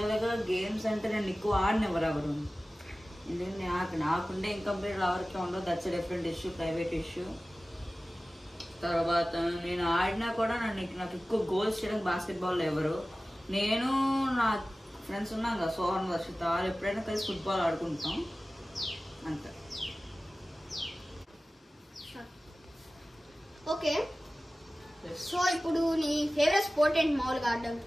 గేమ్స్ అంటే నేను ఎక్కువ ఆడినెవరు ఎవరు, ఎందుకంటే నాకుండే ఇన్కంప్లీట్ ఎవరికి ఉండదు. That's different issue, private issue. తర్వాత నేను ఆడినా కూడా నాకు ఎక్కువ గోల్స్ చేయడానికి బాస్కెట్బాల్ ఎవరు. నేను నా ఫ్రెండ్స్ ఉన్నాం కదా, సోహన్, వర్షిత, వాళ్ళు ఎప్పుడైనా కలిసి ఫుట్బాల్ ఆడుకుంటాం, అంతే. ఓకే. సో ఇప్పుడు నీ ఫేవరెట్ స్పోర్ట్ ఏంటి మామూలుగా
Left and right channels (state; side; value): normal; both; correlation 0.97